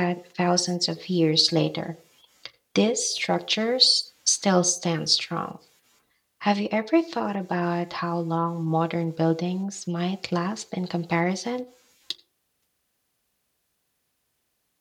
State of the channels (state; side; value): identical; both; correlation 1.00